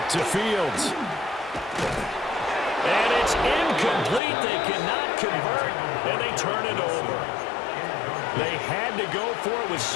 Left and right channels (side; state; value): right; drops out; at 4.2 s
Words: to Fields. And it's incomplete. They cannot convert, and they turn it over. They had to go for it with